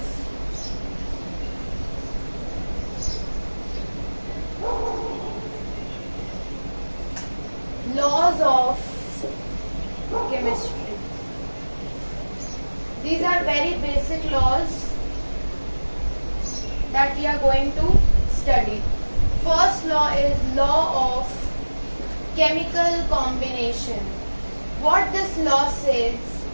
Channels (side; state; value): both; inverted; correlation -1.00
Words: laws of chemistry. These are very basic laws that we are going to study. First law is law of chemical combination. What this law says?